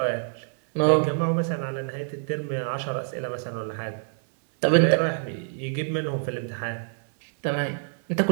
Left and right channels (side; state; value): left; silent; 61 dB below the other